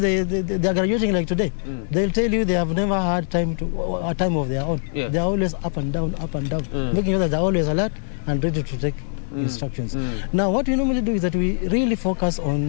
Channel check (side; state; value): right; silent; digital silence